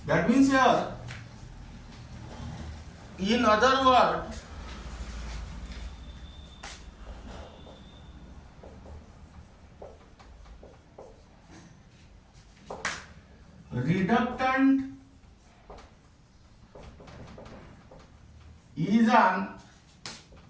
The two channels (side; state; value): both; identical; correlation 1.00